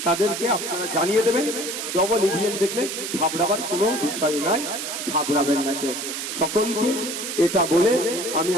তাদেরকে আপনারা জানিয়ে দেবেন। ডবল ইভিএম দেখলে ঘাবড়াবার কোনো বিষয় নাই, ঘাবড়াবেন না কেউ। সকলকে এটা বলে আমি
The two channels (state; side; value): noise; right; hiss, 5 dB below the sound